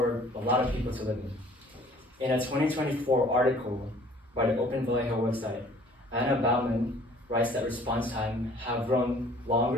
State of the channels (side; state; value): both; normal; correlation 0.54